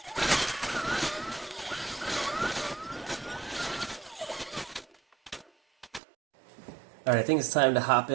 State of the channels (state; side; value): drops out; left; at 6.0 s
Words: Alright, I think it's time to hop